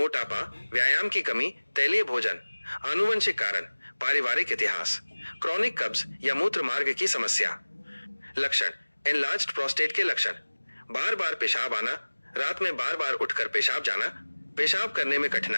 व्यायाम की कमी, तैलीय भोजन, आनुवंशिक कारण, पारिवारिक इतिहास, क्रॉनिक कब्ज या मूत्र मार्ग की समस्या। लक्षण, एनलार्ज्ड प्रोस्टेट के लक्षण, बार बार पेशाब आना, रात में बार बार उठकर पेशाब जाना, पेशाब करने में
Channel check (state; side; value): inverted; both; correlation -1.00